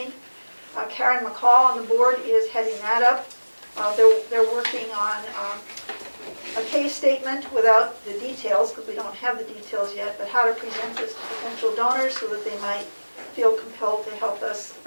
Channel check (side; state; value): both; inverted; correlation -1.00